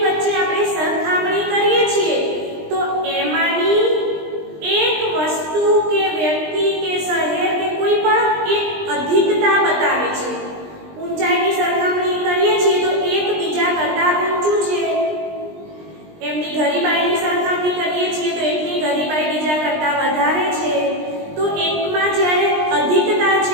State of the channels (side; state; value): left; late; 20 ms